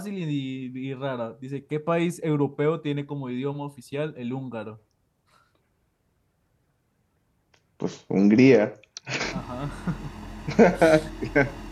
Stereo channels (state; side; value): identical; both; correlation 1.00